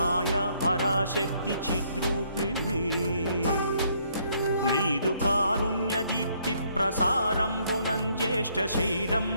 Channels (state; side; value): inverted; both; correlation -0.68